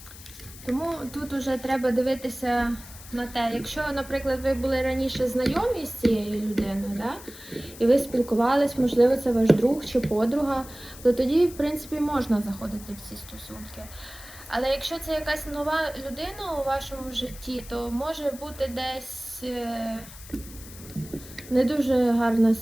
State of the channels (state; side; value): noise; left; hiss, 17 dB below the sound